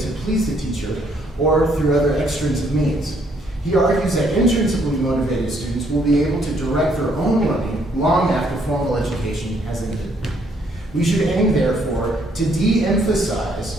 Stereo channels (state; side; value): normal; both; correlation 0.68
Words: to please the teacher or through other extrinsic means. He argues that intrinsically motivated students will be able to direct their own learning long after formal education has ended. We should aim, therefore, to